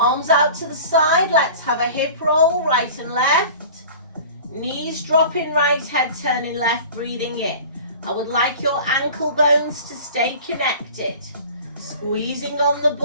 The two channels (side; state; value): both; inverted; correlation -0.41